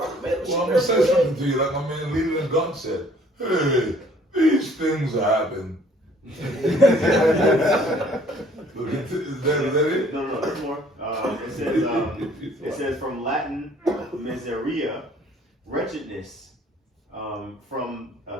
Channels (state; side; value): normal; both; correlation 0.58